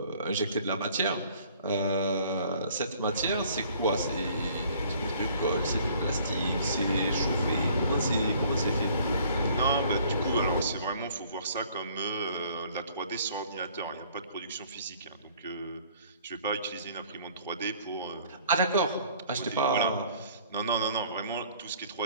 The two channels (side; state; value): both; inverted; correlation -0.56